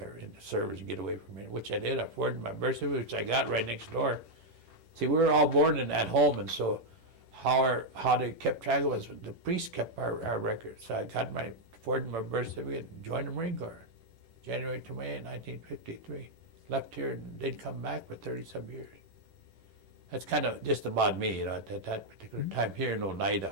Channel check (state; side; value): late; left; 11 ms